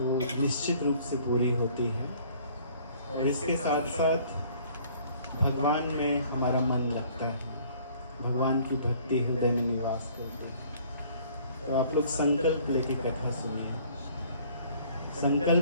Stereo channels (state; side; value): inverted; both; correlation -0.56